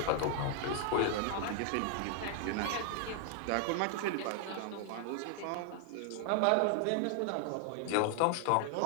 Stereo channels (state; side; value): different; both; correlation 0.00